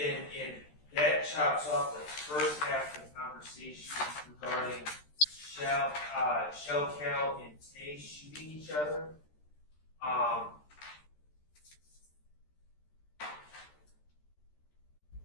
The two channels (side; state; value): right; late; 13 ms